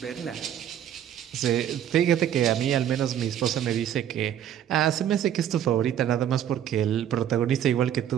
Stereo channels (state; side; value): quieter; left; 10.3 dB